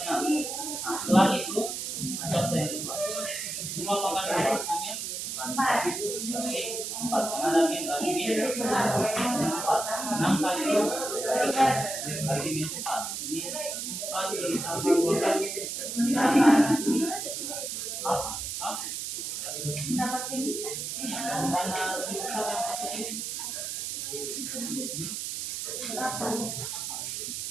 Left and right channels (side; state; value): right; noise; hiss, 4 dB below the sound